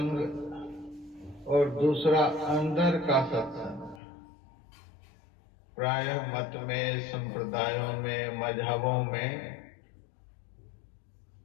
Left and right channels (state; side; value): drops out; right; at 4.0 s